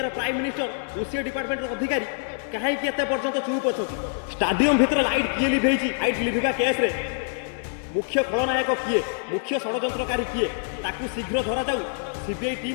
प्राइम मिनिस्टर ओसीए डिपार्टमेंट अधिकारी कहीं एत पर्यंत चुप अच्छा स्टाडियम भितर लाइट किए लिभेची लाइट लिभिबा केस रे मुख्य खलनायक किए मुख्य षड्यंत्रकारी किए ताकू शीघ्र धरा जाऊ सीबीआई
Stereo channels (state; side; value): silent; right; digital silence